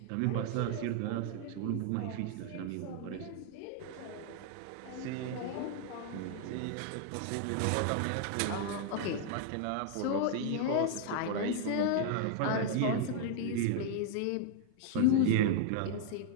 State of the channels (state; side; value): different; both; correlation 0.00